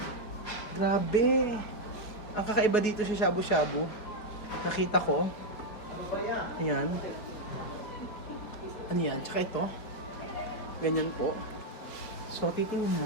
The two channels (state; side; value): late; right; 4.7 ms